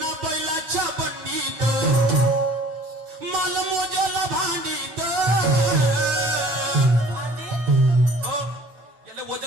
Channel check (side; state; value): left; late; 9.1 ms